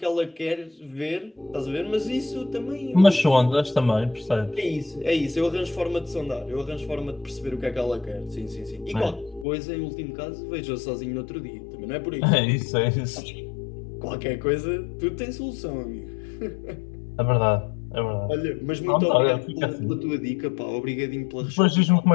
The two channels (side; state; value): right; drops out; at 9.5 s